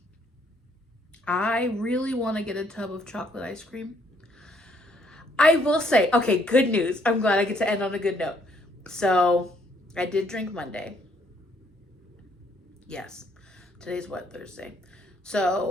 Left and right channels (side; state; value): both; normal; correlation 0.68